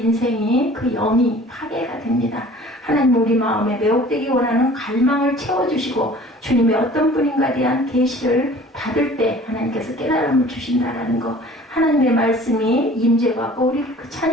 그 영이 파괴가 됩니다. 하나님 우리 마음에 매혹되기 원하는 갈망을 채워주시고 주님의 어떤 분인가에 대한 계시를 받을 때 하나님께서 깨달음을 주신다라는 거. 하나님의 말씀이 임재하고 우리 그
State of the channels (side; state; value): both; normal; correlation 0.47